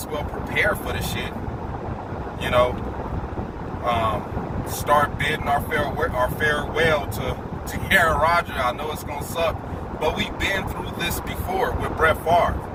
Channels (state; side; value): identical; both; correlation 1.00